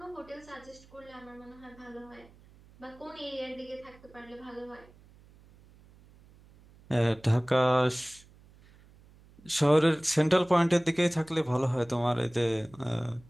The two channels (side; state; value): right; noise; hum, 26 dB below the sound